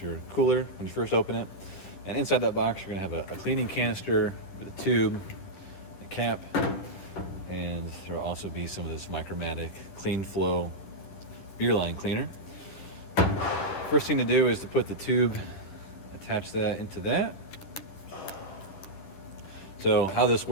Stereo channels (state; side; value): late; right; 10 ms